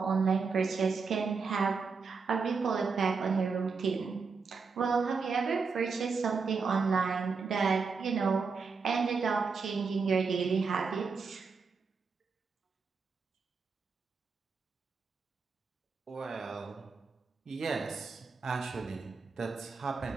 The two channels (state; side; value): quieter; left; 5.0 dB